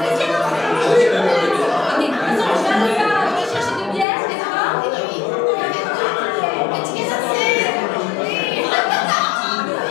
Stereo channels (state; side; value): drops out; right; at 4.0 s